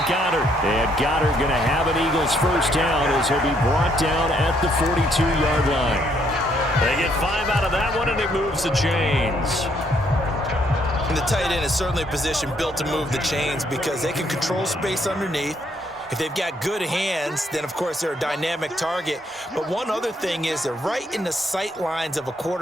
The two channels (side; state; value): both; normal; correlation 0.70